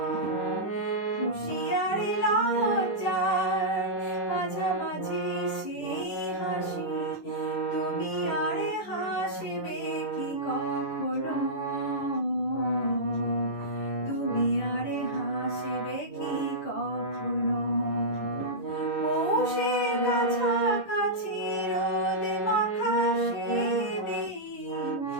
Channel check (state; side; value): late; right; 10 ms